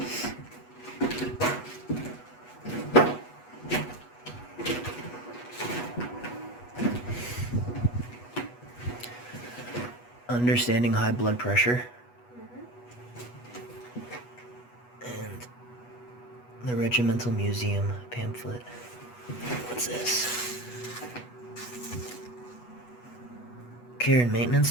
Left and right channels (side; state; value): right; late; 8.2 ms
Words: Understanding high blood pressure. And the Regimental Museum pamphlet. What's this? Care and